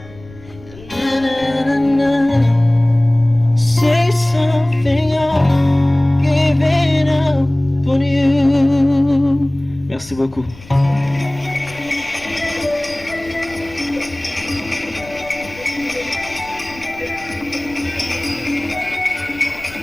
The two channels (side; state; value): left; noise; rumble, 20 dB below the sound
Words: Na, na, na, na. Say something, I'm giving up on you. Merci beaucoup.